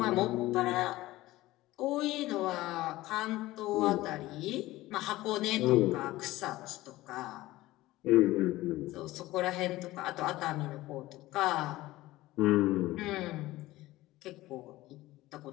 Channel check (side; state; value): right; quieter; 17.4 dB